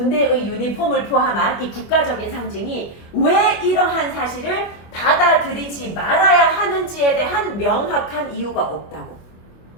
유니폼을 포함한 이 국가적인 상징이 왜 이러한 사실을 받아들이지 말아야 하는지에 대한 명확한 이유가 없다고.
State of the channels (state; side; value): late; right; 25 ms